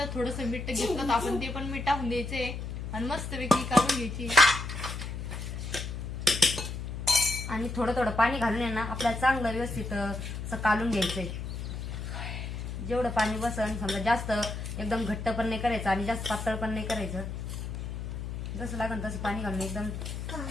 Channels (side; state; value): left; noise; hum, 6 dB below the sound